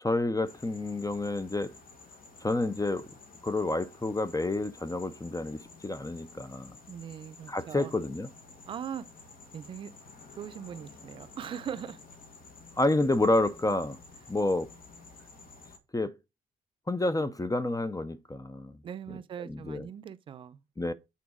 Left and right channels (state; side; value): normal; both; correlation 0.79